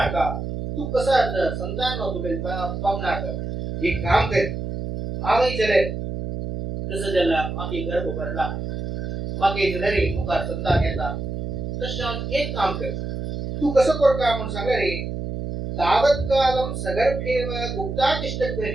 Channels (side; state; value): right; noise; hum, 5 dB below the sound